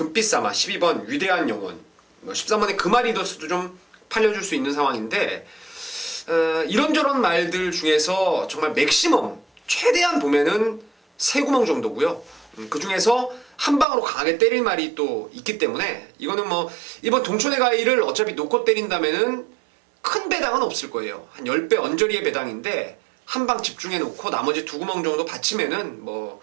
12번 위대한 영혼, 13번의 금아리더스도 좀 팔려줄 수 있는 상황인데, 이런저런 말들 중에서 정말 맥시멈 최대한 보면은 3구멍 정도고요. 그 중에서 한 방으로 강하게 때릴 말이 또 있기 때문에 이거는 뭐 이번 동촌의 가이를 어차피 놓고 때린다면은 큰 배당은 없을 거예요. 한 10배 언저리의 배당인데 한 방 집중해 놓고 나머지 2구멍 정도 받치면은 뭐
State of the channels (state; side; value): drops out; left; at 13.9 s